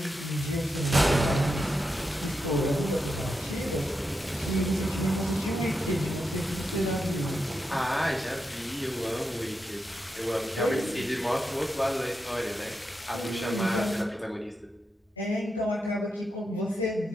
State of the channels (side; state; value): both; normal; correlation 0.86